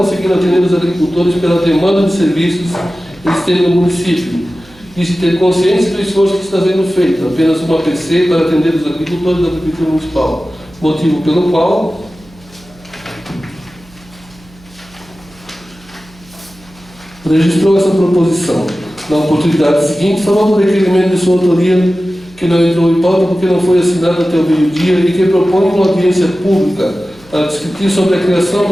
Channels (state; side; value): noise; right; hum, 26 dB below the sound